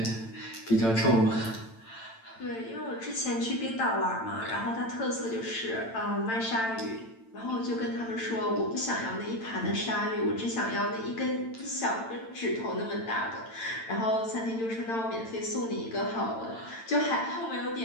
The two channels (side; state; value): right; late; 8.9 ms